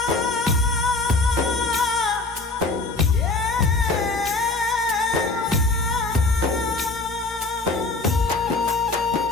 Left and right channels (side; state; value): right; quieter; 3.4 dB